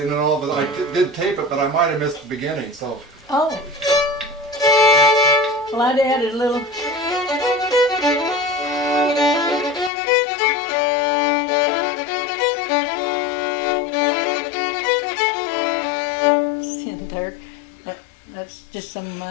and all, but I did tape it, but I might have missed the beginning. So. Oh. Well, I'd added a little. In there. That's just something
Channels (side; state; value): right; drops out; at 9.9 s